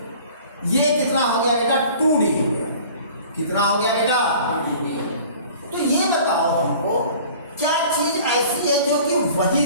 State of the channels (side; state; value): both; inverted; correlation -0.47